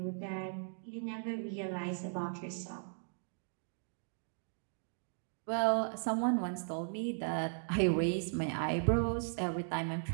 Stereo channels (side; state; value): left; silent; digital silence